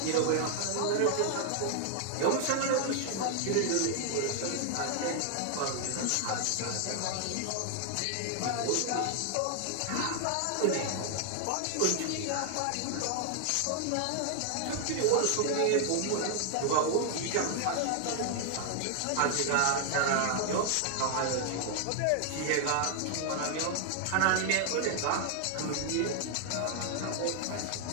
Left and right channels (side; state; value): both; different; correlation 0.00